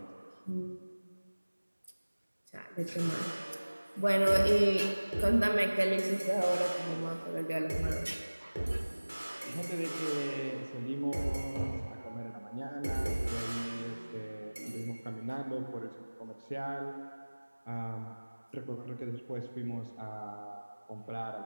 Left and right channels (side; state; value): both; inverted; correlation -1.00